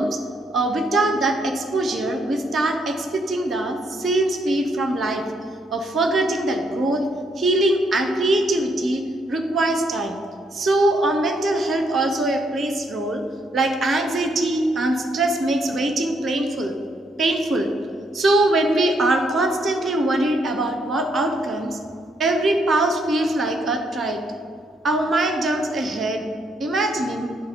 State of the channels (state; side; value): normal; both; correlation 0.73